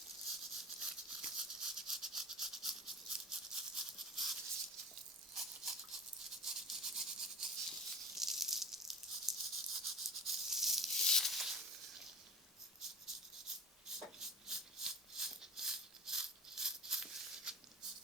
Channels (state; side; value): normal; both; correlation 0.34